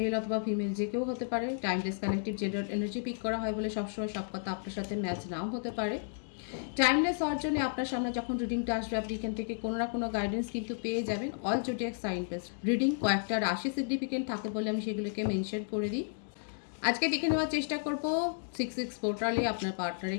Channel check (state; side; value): silent; right; digital silence